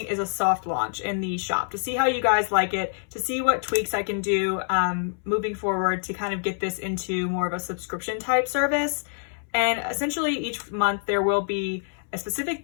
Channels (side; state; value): right; silent; 61 dB below the other